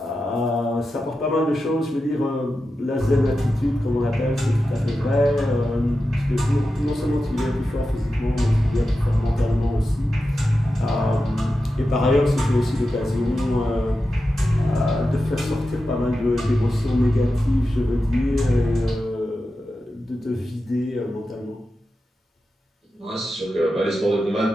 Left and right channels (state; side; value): normal; both; correlation 0.91